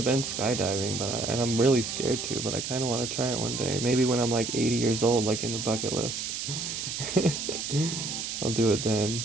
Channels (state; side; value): noise; right; hiss, 4 dB below the sound